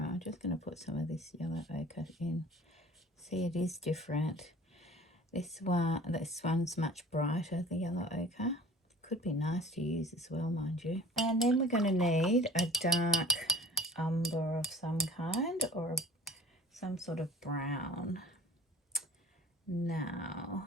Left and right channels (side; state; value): both; normal; correlation 0.44